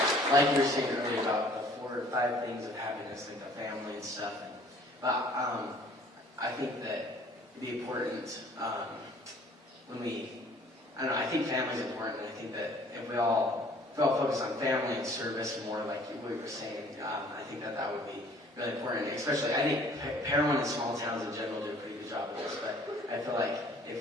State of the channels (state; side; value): normal; both; correlation 0.55